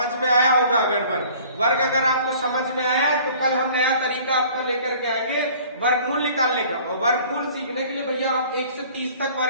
में आया होगा। अगर वर्ग अगर आपको समझ में आया तो कल हम नया तरीका आपको लेकर के आएंगे वर्गमूल निकालने का। और वर्गमूल सीखने के लिए भैया आप 1 से 30 तक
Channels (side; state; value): both; inverted; correlation -0.50